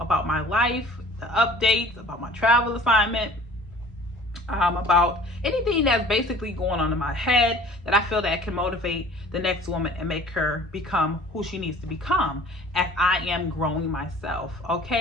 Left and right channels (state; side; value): normal; both; correlation 0.48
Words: my life, the updates about my travel assignment, about anything that's basically going on in my head that I feel that can motivate the next woman and make her become who she needs to become as I am growing myself.